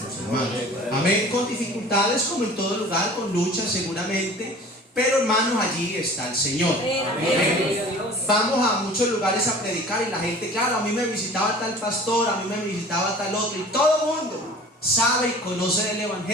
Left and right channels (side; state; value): both; normal; correlation 0.44